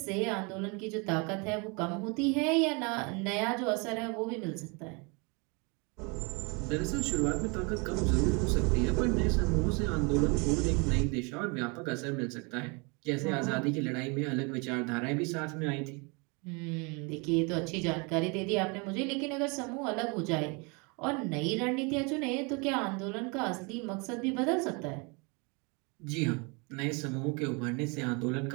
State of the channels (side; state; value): left; quieter; 31.1 dB